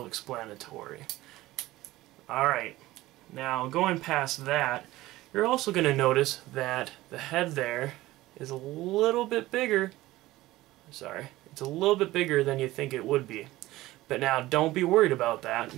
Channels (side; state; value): left; quieter; 17.4 dB